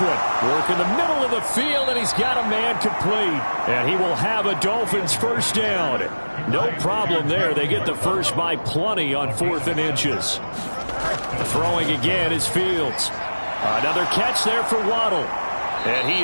one. Work in the middle of the field, and he's got a man complete. And he will have a Dolphins 1st down. No problem there. They get the first by plenty on 4th and inches. Throwing again is Fields. Another catch there for Waddle. And he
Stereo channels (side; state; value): both; inverted; correlation -1.00